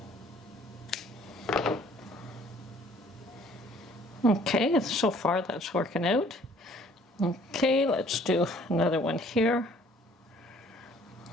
Okay, so far that's working out. Okay, let's do another one here.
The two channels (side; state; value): both; normal; correlation 0.57